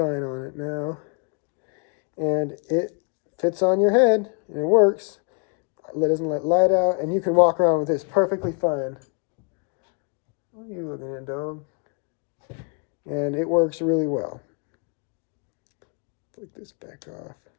on it now. And it fits on your head, and it works. It doesn't let light out, and you can walk around with this perfectly fine. What are you looking at, dog? And it works really well. Flick this back off.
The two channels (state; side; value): quieter; right; 37.8 dB